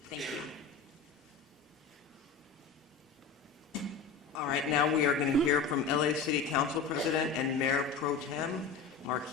Thank you. All right, now we are going to hear from LA City Council President and Mayor Pro Tem,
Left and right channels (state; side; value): quieter; right; 5.2 dB